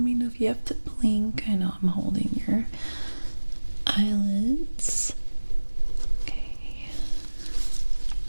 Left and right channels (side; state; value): both; inverted; correlation -1.00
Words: know if you have to blink. I know I'm holding your eyelids. Okay.